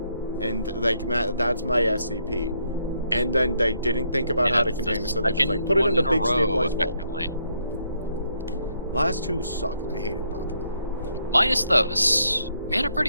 And, like, that's my SCP. And then they didn't think about how to contain it, so they just, like, put it in a big stabilized vault. Last two sucked. I hated both of them. Minus those, we had a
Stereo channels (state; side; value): inverted; both; correlation -0.73